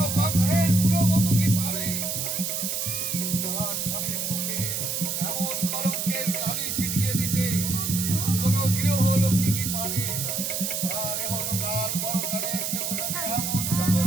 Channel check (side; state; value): right; noise; hiss, 1 dB below the sound